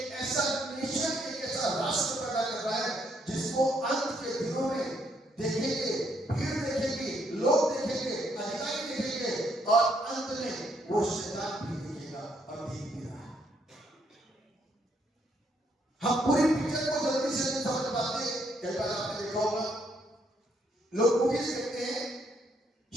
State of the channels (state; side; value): normal; both; correlation 0.73